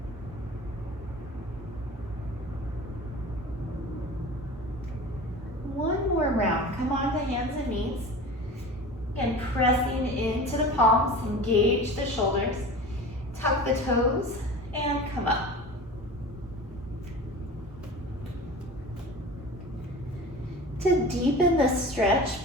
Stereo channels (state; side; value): normal; both; correlation 0.35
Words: One more round. Come on to hands and knees and pressing into the palms, engage the shoulders, tuck the toes, and come up. To deepen the stretch,